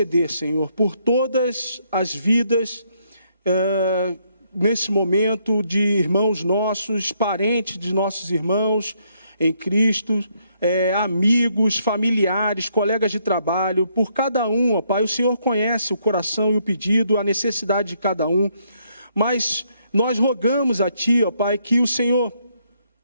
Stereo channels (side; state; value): both; inverted; correlation -0.73